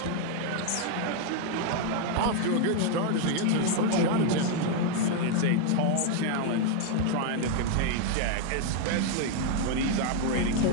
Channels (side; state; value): both; different; correlation 0.01